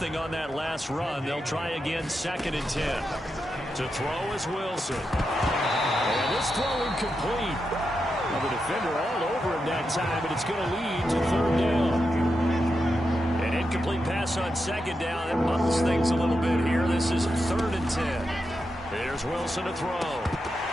on that last run. They'll try again, 2nd and 10. To throw is Wilson. And this throw incomplete. Well, the defender all over him that time, but it's going to lead to 3rd down. An incomplete pass on 2nd down. That muddles things a little bit here. This is 3rd and 10. Here's Wilson to throw.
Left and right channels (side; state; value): both; normal; correlation 0.87